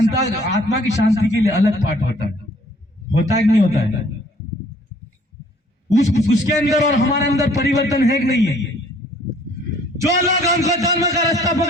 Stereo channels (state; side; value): normal; both; correlation 0.58